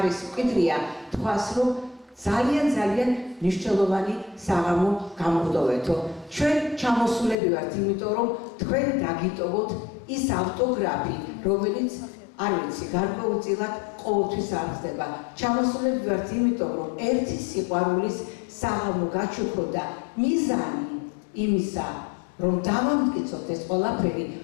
მკვიდრია, თქვას რომ ძალიან მნიშვნელოვანი საღამო გამოგდოვეთო. ჩვენ ჩამოსულები ვართ, იმიტომ რომ თქვენ დაგიტოვოთ ის ავტოგრაფი, რომელიც არ ვიცი, გარკვეულწილად ყოველთვის აღწდება. ჩამოსულები ვართ, იმიტომ რომ ერთი სიყვარულის საღამო გაჩუქროთ და მიზანი იმისა, რომ დავამტკიცოთ ეს ყველაფერი,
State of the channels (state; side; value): drops out; right; at 7.4 s